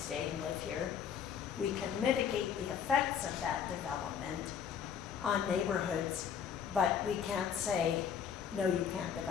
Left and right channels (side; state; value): right; quieter; 7.8 dB